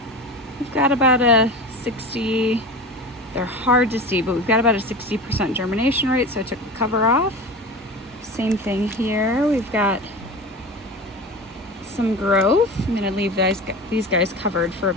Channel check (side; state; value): both; normal; correlation 0.30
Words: we've got about a 60, they're hard to see, but we've got about a 60% germination rate, so I took the cover off. Same thing here, we've got some growth. I'm gonna leave these guys covered for a